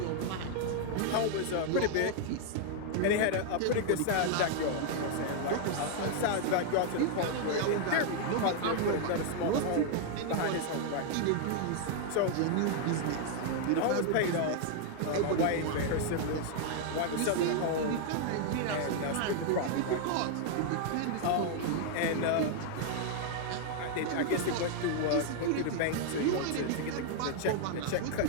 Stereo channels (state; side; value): different; both; correlation 0.00